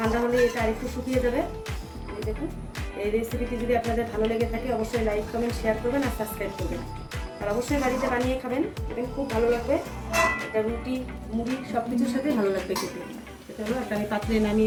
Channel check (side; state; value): both; identical; correlation 1.00